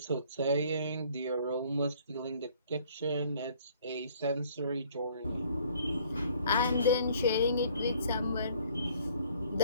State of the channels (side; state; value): both; inverted; correlation -0.59